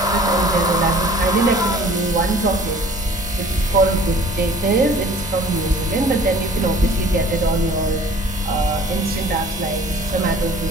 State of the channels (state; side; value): normal; both; correlation 0.50